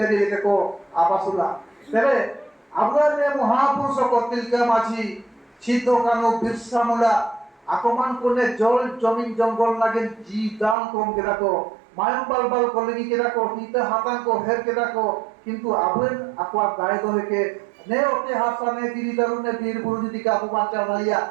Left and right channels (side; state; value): left; drops out; at 10.8 s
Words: लेके को आबासुला तबे अब रे महापुरुष को तिलका माझी छितो कानो बिरसा मुला आकमान कोने जल जमीन जंगल लागे जी दान कम केरा को मायम बाल कलेगी केरा को हिते हातां को हेर केरा को किंतु आबेन आकवा गाय दो के ने ओते हासा ने दिरी दारु ने वीर बुरु जदि का अपु बांचा भाइया